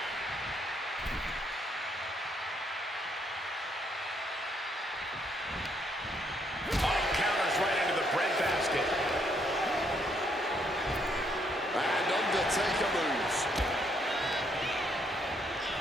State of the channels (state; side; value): normal; both; correlation 0.72